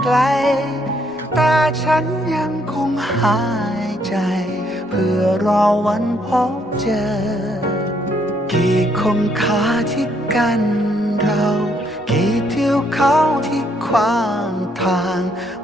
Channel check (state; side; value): normal; both; correlation 0.71